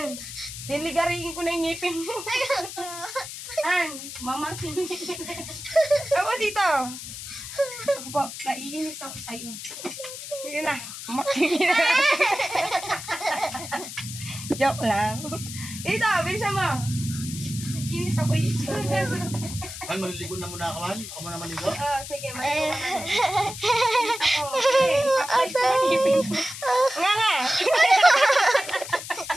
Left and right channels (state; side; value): noise; left; hiss, 10 dB below the sound